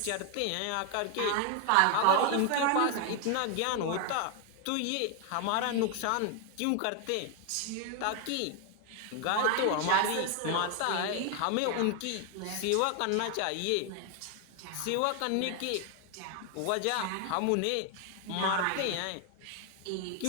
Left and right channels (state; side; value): different; both; correlation 0.01